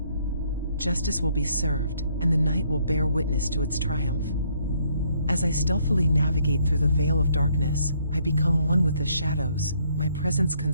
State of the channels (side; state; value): both; inverted; correlation -0.68